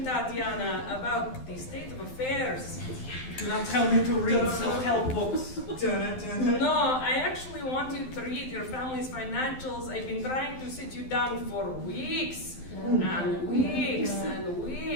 Tatiana, about the state of affairs. Do not tell me to read self-help books. No, I actually want you to read your family's financials. I've been trying to sit you down for weeks and weeks and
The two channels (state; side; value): late; right; 12 ms